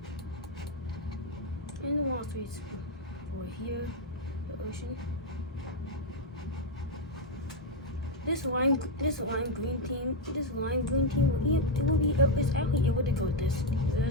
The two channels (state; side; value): normal; both; correlation 0.03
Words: And the Wall Street's for here, the ocean. This lime green team is actually able to go this